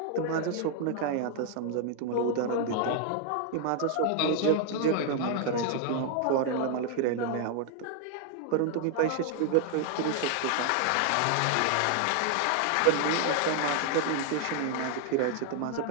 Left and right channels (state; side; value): different; both; correlation 0.00